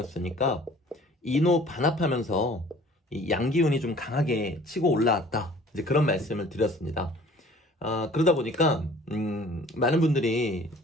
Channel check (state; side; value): normal; both; correlation 0.51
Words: 인호 반합하면서 이 양기운이 좀 강하게 치고 올라왔다, 이제 그런 말씀을 드렸습니다. 그러다 보니까 많은 분들이